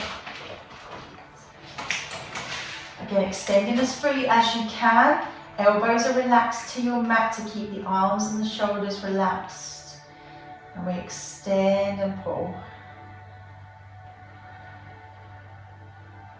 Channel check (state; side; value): identical; both; correlation 1.00